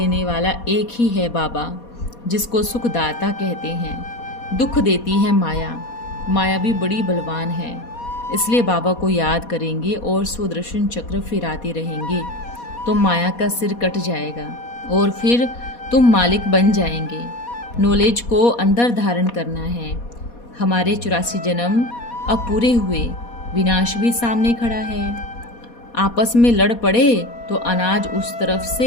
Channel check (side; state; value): right; late; 4.2 ms